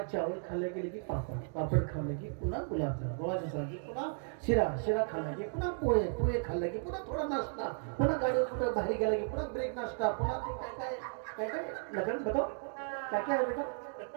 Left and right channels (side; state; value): left; silent; digital silence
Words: चावल खाल्ले गेले की पापड खाल्ले की पुन्हा गुलाबजाम गोळाच्या सारखी, पुन्हा शिरा खाल्ला की पुन्हा पोहे खाल्ले की पुन्हा थोडा नाश्ता, पुन्हा गाडीवर कुठं बाहेर गेला की पुन्हा ब्रेक नाश्ता, पुन्हा काय लगन बताओ क्या क्या है बेटा.